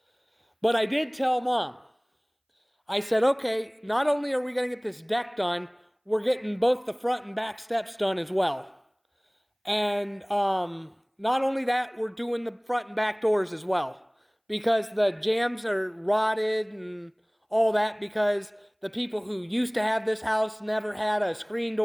But I did tell Mom, I said, okay, not only are we going to get this deck done, we're getting both the front and back steps done as well. And not only that, we're doing the front and back doors as well. Because the jambs are rotted and all that because the people who used to have this house never had a screen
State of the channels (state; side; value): identical; both; correlation 1.00